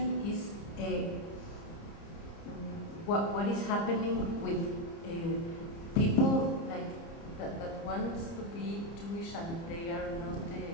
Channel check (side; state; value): right; late; 30 ms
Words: is what is happening with people like that wants to be Jewish and they are not.